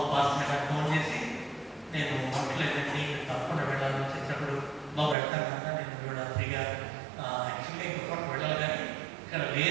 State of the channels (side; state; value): left; drops out; at 5.2 s